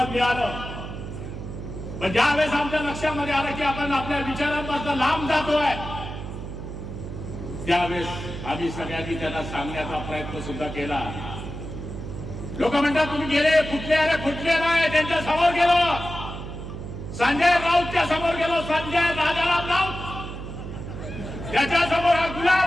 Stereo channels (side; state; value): right; noise; hum, 8 dB below the sound